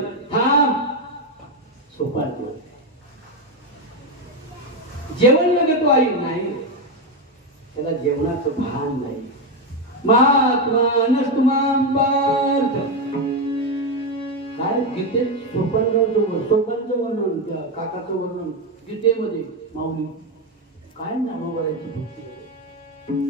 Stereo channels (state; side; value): normal; both; correlation 0.08